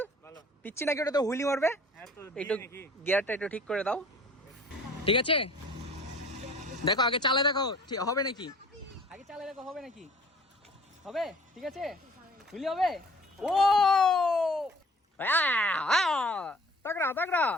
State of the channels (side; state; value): both; normal; correlation 0.50